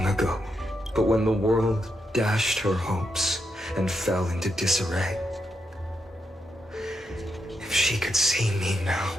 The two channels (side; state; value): both; normal; correlation 0.82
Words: ago, but when the world dashed her hopes and fell into disarray, if she could see me now,